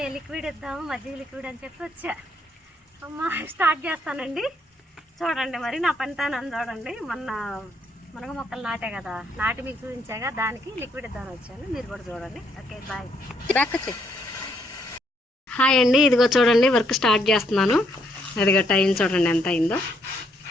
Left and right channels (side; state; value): both; normal; correlation 0.72